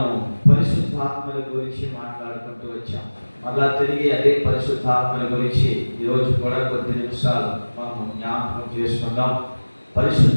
పరిశుద్ధాత్మల గురించి మాట్లాడుకుంటూ వచ్చాం. మళ్ళా తిరిగి అదే పరిశుద్ధాత్మల గురించి ఈరోజు కూడా కొద్ది నిమిషాలు మనము జ్ఞాపకం చేసుకుందాం.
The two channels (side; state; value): both; inverted; correlation -1.00